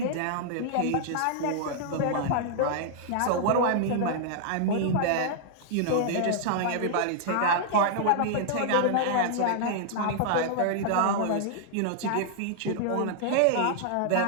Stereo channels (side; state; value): both; different; correlation -0.01